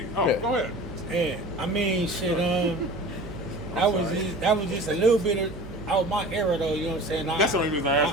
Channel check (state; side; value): noise; right; hum, 14 dB below the sound